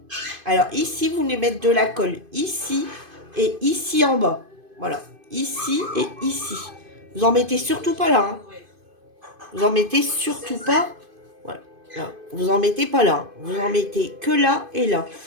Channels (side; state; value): left; late; 2.5 ms